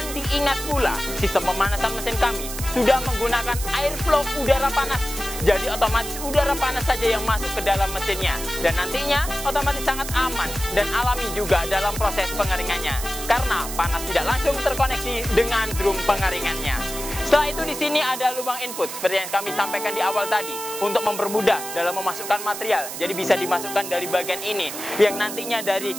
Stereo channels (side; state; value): right; noise; hiss, 8 dB below the sound